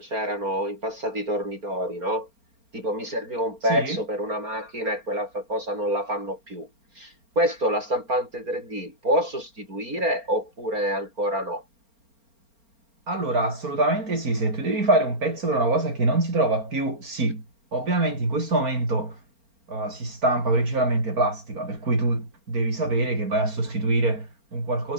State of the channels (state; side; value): late; left; 4.4 ms